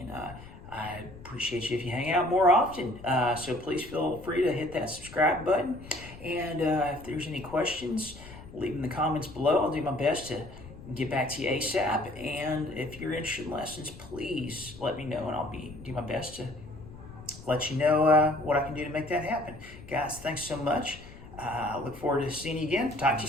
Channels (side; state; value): left; noise; rumble, 17 dB below the sound